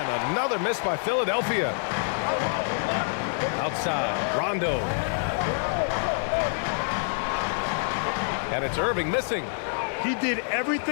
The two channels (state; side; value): silent; right; digital silence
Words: another miss by Philadelphia. Outside, Rondo. And it's Irving missing. He did